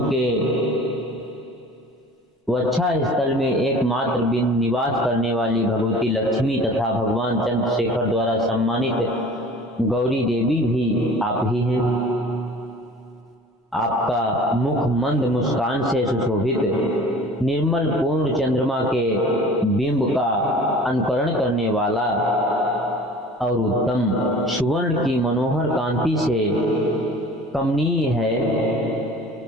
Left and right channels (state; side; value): normal; both; correlation 0.44